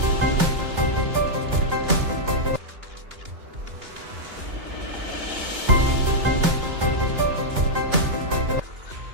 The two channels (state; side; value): late; left; 2.9 ms